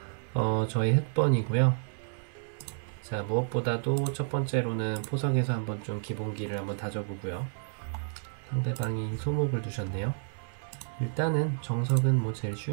저희 흑번이고요. 자, 무엇보다도 첫 번째로는 포석에서 한번 좀 기본기를 한번 다져보고요. 상대방이 소목을 두셨네요. 일단은 정석은 뭐 제일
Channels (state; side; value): silent; left; 58 dB below the other